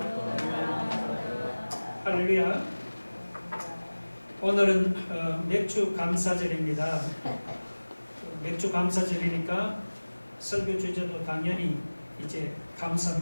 할렐루야. 오늘은 맥주 감사절입니다. 맥주 감사절이니까 설교 주제도 당연히 이제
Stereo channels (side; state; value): both; inverted; correlation -1.00